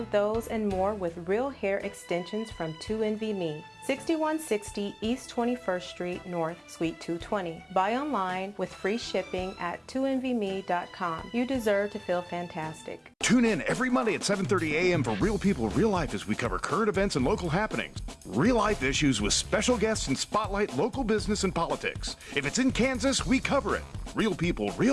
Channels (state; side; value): identical; both; correlation 1.00